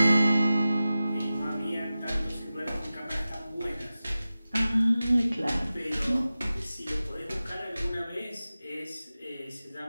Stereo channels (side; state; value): both; inverted; correlation -0.95